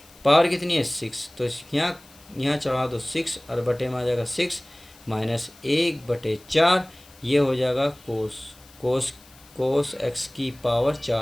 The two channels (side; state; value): left; noise; hiss, 25 dB below the sound